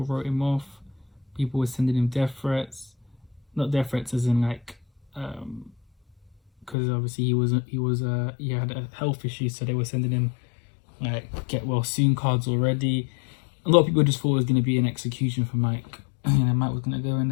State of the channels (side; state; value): right; drops out; at 6.8 s